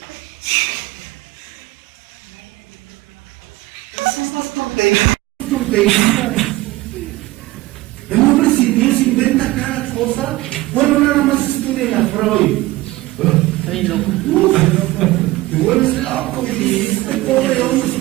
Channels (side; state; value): left; quieter; 18.6 dB